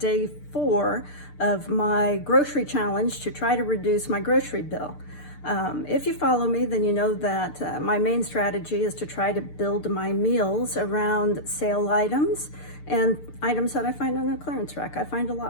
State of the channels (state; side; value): late; right; 6.7 ms